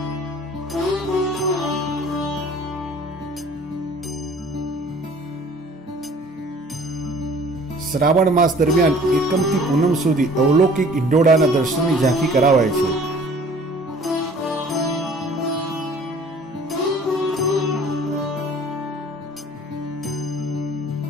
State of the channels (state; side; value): normal; both; correlation 0.51